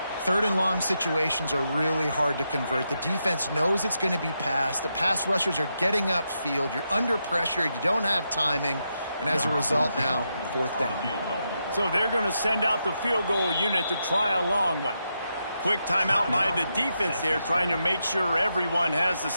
Third and long situations are really hard to convert. The defense knows it's going to be passed. The pass rushers are getting upfield. You're under pressure. You don't have timing. And as a result now, fourth down. So they're going to send out the field goal unit to try a long one. Quick timeout by the defense there, trying to make sure everyone has the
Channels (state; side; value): inverted; both; correlation -0.84